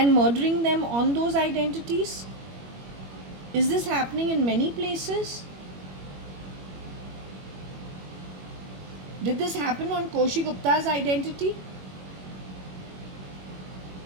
murdering them on those identities? Is this happening in many places? Did this happen on Koshi Gupta's identity?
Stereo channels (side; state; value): left; late; 21 ms